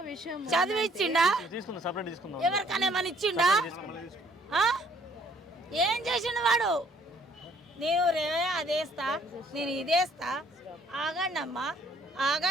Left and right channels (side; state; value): both; normal; correlation 0.62